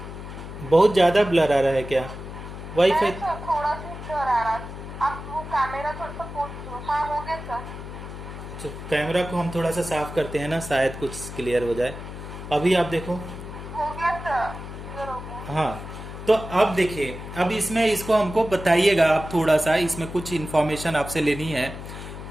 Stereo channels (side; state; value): left; noise; hum, 10 dB below the sound